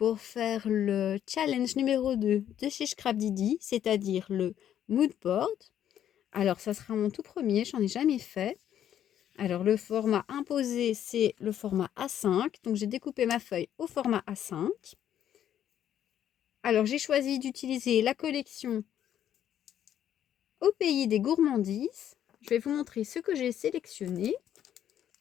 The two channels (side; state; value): right; quieter; 10.4 dB